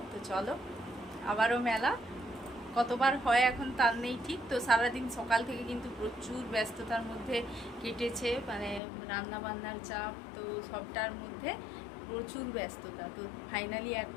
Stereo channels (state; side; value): drops out; right; at 8.8 s